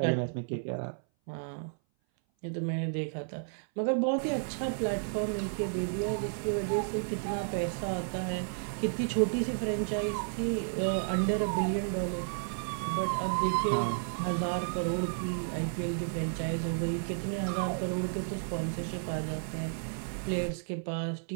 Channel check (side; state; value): left; silent; 56 dB below the other